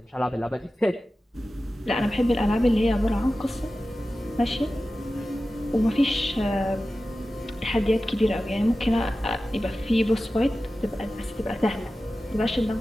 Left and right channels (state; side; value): normal; both; correlation 0.95